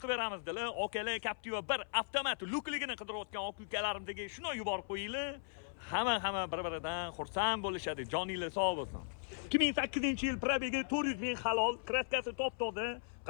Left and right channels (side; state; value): right; silent; 53 dB below the other